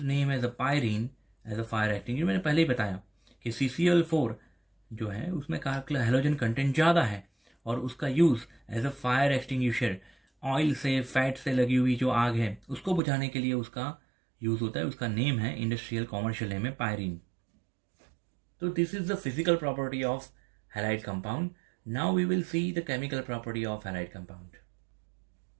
name as a pyrene as a fire extinguisher। मैंने पहले ही बताया कि CCl4 जो है उसमें halogen content ज़्यादा है और उसका use as a fire extinguisher, oil से फैट से लगी हुई जो आग है उसको बुझाने के लिए उसका यूज होता है। उसका नेम है, इंडस्ट्रियल कॉमर्शियल नेम है, पायरीन। तो this is the physical property of halide compound. Now we will see the chemical property of halide compound.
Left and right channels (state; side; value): drops out; left; at 13.0 s